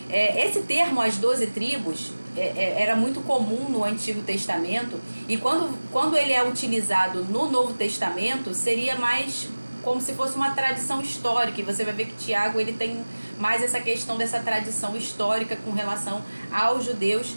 Esse termo, as 12 tribos, era muito comum no Antigo Testamento, e quando ele é utilizado no Novo Testamento, seria mais como se fosse uma tradição histórica. E você vai ver que Tiago, ele tem mais essa questão dessa tradição histórica com relação aos judeus.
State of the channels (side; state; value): both; inverted; correlation -1.00